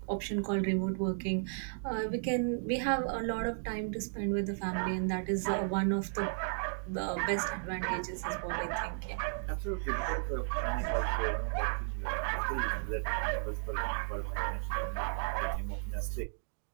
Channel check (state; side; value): silent; left; digital silence